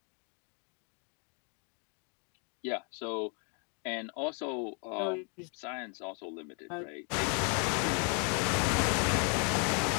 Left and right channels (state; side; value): quieter; right; 37.7 dB